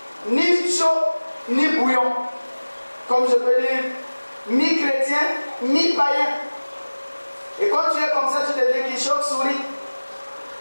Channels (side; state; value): both; inverted; correlation -1.00